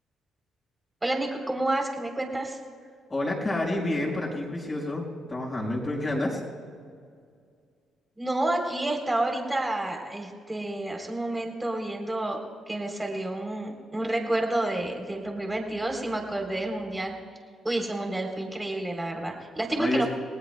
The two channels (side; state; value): both; normal; correlation 0.91